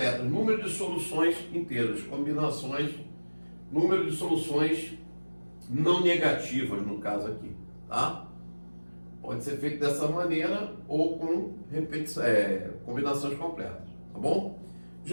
número de soluções inteiras, número de soluções não negativas, no caso aqui. Tá? Pode ser feito dessa maneira ou com combinações completas, tá bom?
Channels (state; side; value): inverted; both; correlation -1.00